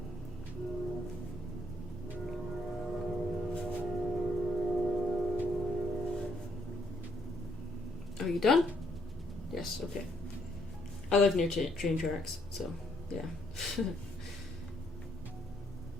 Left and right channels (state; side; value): normal; both; correlation 0.71